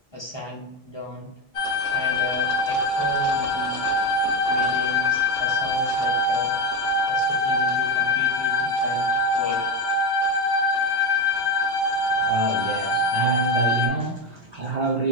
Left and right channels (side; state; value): both; normal; correlation 0.14